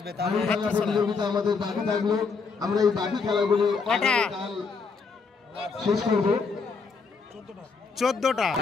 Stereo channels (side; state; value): right; quieter; 4.9 dB